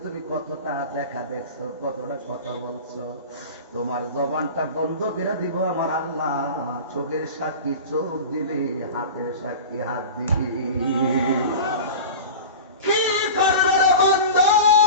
তুমি কতটা দেখা দেখছো, কতটা কথা বলছো। তোমার জবানটা বন্ধ করে দিব আমার আল্লাহ, চোখের সাক্ষী চোখ দিবি, হাতের সাক্ষী হাত দিবি। কি করবে রে বন্ধু,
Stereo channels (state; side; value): inverted; both; correlation -0.33